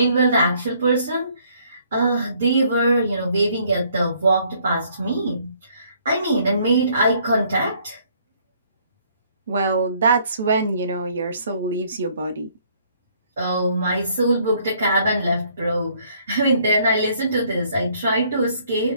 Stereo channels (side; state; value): both; inverted; correlation -0.64